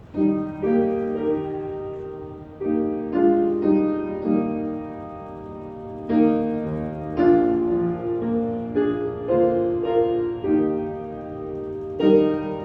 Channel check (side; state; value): both; identical; correlation 1.00